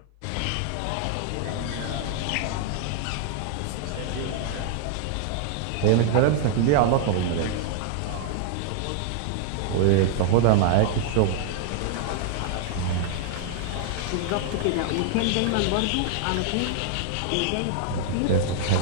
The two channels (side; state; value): both; different; correlation 0.00